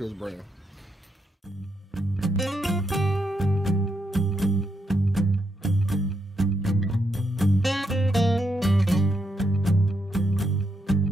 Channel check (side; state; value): both; normal; correlation 0.80